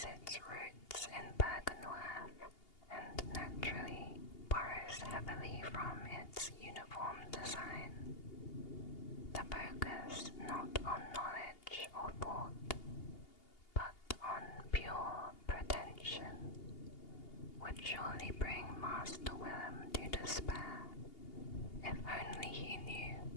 its roots in Byrgenwerth and naturally borrows heavily from its uniform design. The focus not on knowledge or thought, but on pure pretension, would surely bring Master Willem to despair, if only he knew."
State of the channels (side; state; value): right; late; 2.8 ms